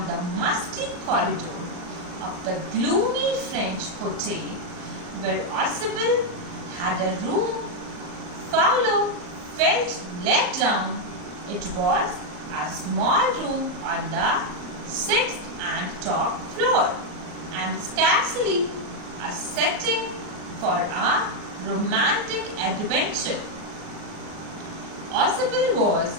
the musty corridor of the gloomy French hotel where Oswald had a room, Fowler felt let down. It was a small room on the 6th and top floor, and scarcely a setting for a romantic adventure. Oswald was,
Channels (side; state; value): left; late; 39 ms